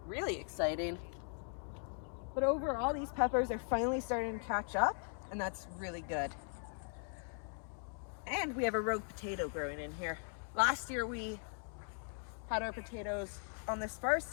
really exciting. But overall, these peppers are finally starting to catch up, and that's really good. And we have a rogue potato growing in here. Last year we had our potatoes on this far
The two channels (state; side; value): silent; right; 52 dB below the other